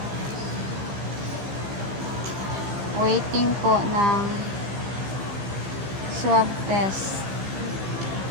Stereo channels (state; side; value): late; left; 15 ms